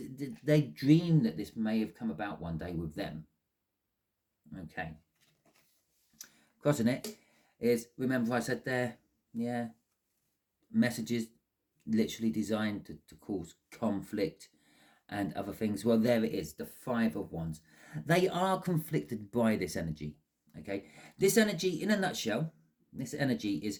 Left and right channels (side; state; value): both; identical; correlation 1.00